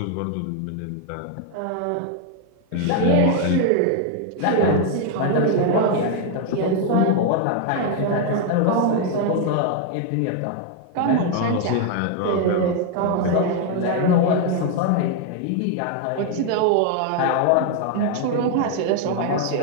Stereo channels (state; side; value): different; both; correlation 0.00